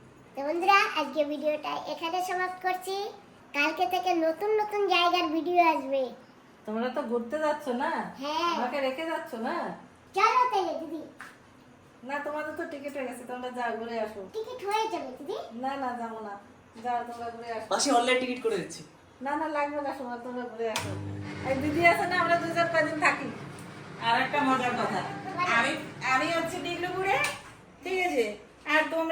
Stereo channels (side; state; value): both; identical; correlation 1.00